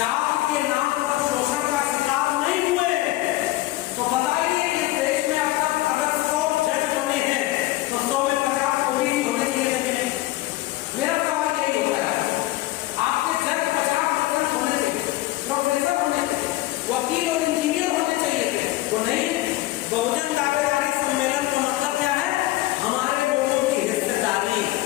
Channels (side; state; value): right; quieter; 17.4 dB